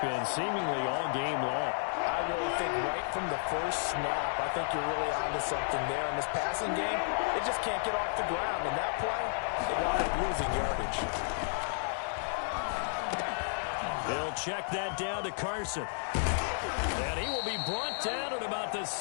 seemingly all game long? I really think right from the first snap, I think you're really onto something there. In this passing game, it just can't get off the ground. And that play, they wound up losing yardage. They'll check that down to Carson. And he will be brought down at about the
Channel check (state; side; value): silent; right; digital silence